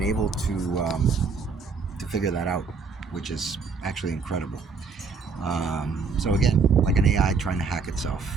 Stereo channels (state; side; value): quieter; left; 4.9 dB